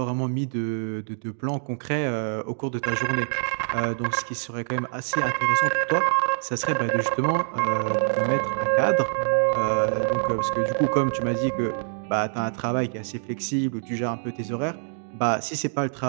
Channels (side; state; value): left; silent; digital silence